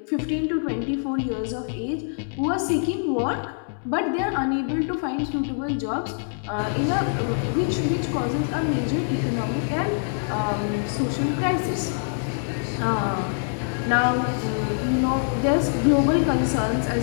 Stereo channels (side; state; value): right; silent; digital silence